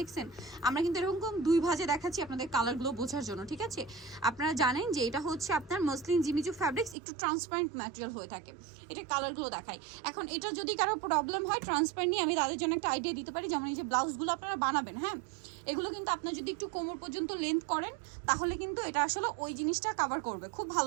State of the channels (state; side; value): drops out; left; at 7.0 s